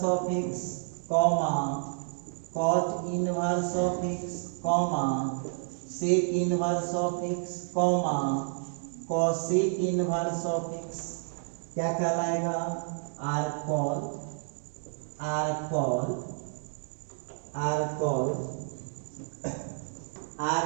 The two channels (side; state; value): left; silent; digital silence